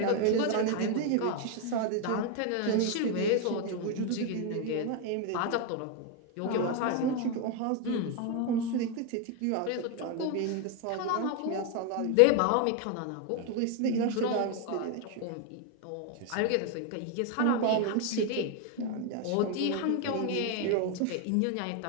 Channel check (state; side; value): different; both; correlation 0.01